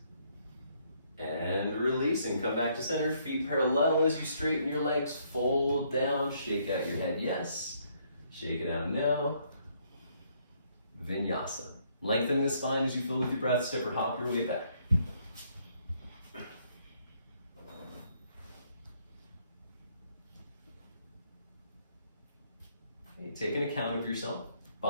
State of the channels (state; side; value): inverted; both; correlation -0.69